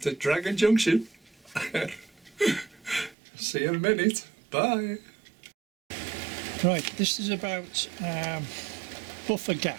to Dragon Junction. See you in a minute. Bye. Right, this is about buffer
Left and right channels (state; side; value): drops out; left; at 3.2 s